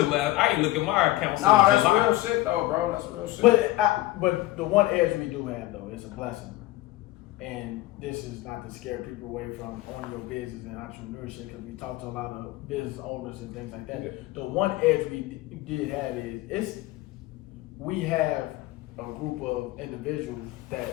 the last, I ain't look at my account since Nah, that's July. real shit though, bro. That's real shit. But the one edge we do have though is a blessing, and this is not to scare people away from owning your business and entrepreneurship, because we talk to a lot of business owners and things like that. Yeah. The one edge we did have is we have a group of individuals that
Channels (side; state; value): right; quieter; 17.4 dB